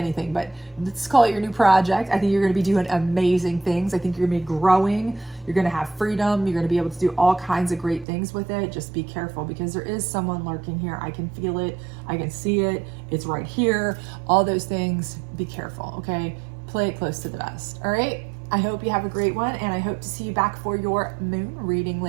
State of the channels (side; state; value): left; drops out; at 8.1 s